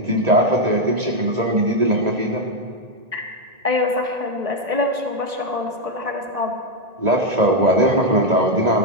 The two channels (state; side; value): late; left; 1.9 ms